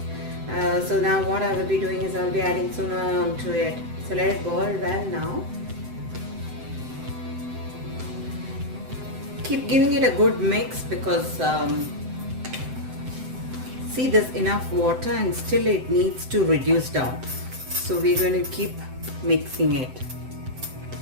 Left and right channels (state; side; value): late; left; 7.8 ms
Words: So now what I will be doing is I will be adding sooner onto it. So let it boil well now. Keep giving it a good mix because see, there's enough water and still it needs to reduce down. So we're going to keep mixing it.